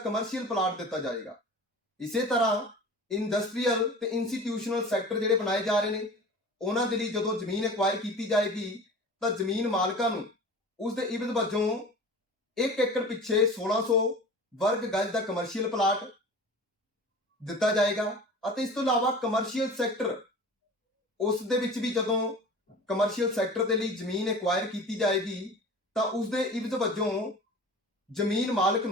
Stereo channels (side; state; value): both; normal; correlation 0.39